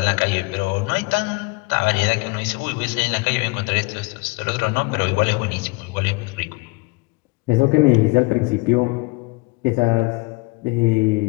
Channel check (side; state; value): right; quieter; 26.9 dB